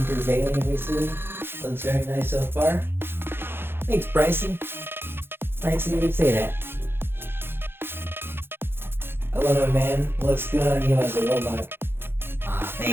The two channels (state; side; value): late; left; 0.11 ms